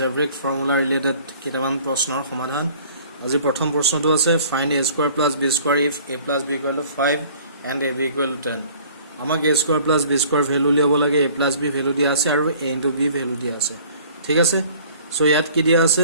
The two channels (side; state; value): both; inverted; correlation -0.52